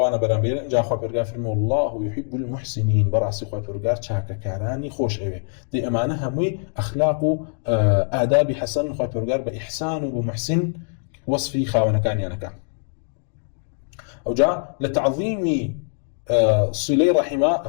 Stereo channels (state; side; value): silent; right; digital silence